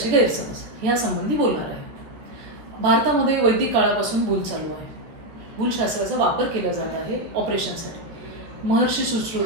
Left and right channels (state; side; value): late; left; 13 ms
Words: गैरसमज ह्यासंबंधी बोलणार आहे. भारतामध्ये वैदिक काळापासून भूल चालू आहे. भूलशास्त्राचा वापर केला जात आहे ऑपरेशनसाठी. महर्षी